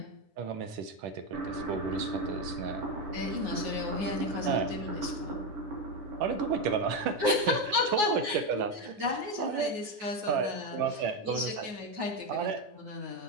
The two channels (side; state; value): left; late; 9.5 ms